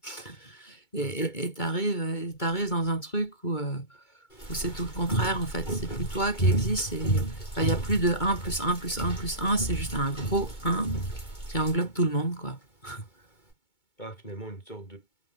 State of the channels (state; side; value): late; right; 2.2 ms